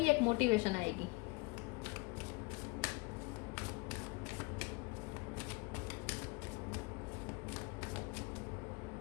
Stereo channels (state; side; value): quieter; right; 27.3 dB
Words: एक मोटिवेशन आएगी।